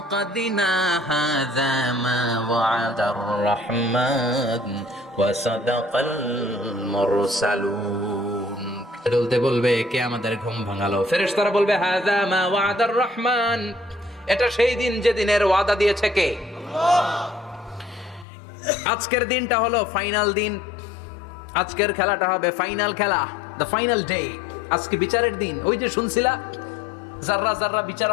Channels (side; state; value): right; drops out; at 18.2 s